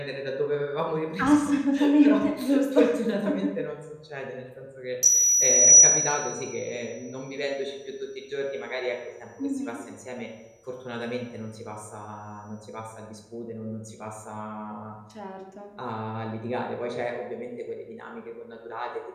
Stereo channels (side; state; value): both; identical; correlation 1.00